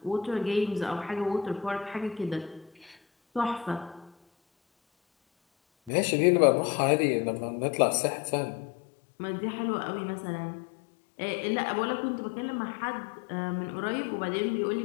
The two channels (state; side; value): drops out; right; at 5.9 s